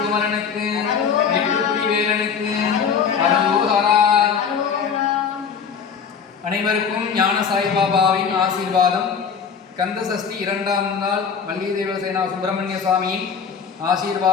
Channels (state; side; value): quieter; right; 6.6 dB